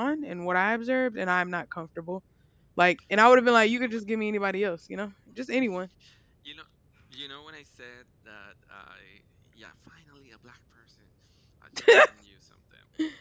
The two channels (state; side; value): identical; both; correlation 1.00